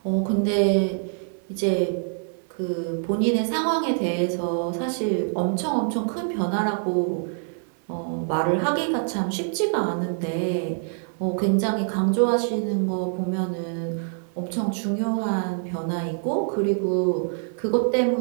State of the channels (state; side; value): silent; left; 57 dB below the other